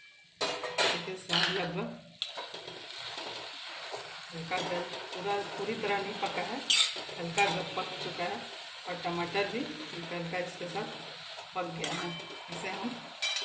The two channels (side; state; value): both; identical; correlation 1.00